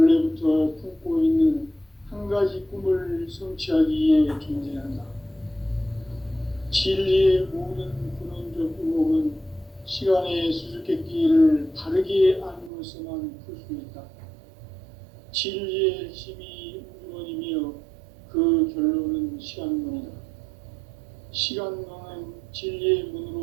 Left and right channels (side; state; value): left; drops out; at 12.7 s